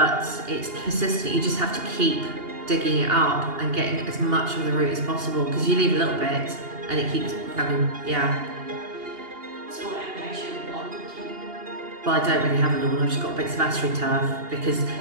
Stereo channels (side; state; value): left; late; 2.8 ms